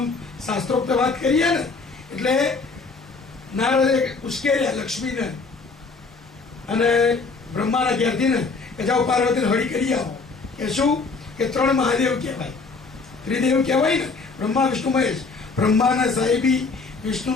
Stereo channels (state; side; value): quieter; right; 4.2 dB